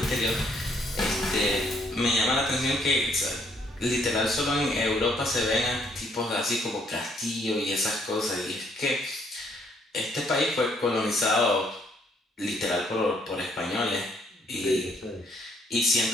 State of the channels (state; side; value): normal; both; correlation 0.68